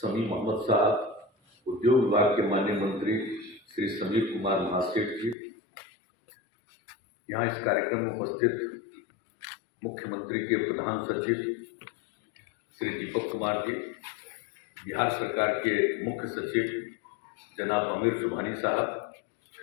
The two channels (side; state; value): right; drops out; at 5.4 s